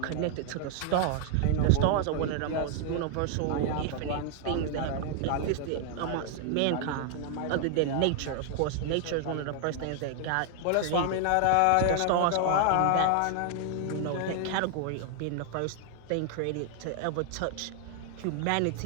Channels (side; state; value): both; different; correlation 0.00